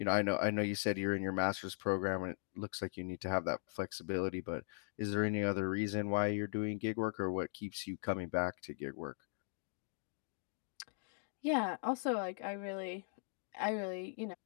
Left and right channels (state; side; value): silent; right; digital silence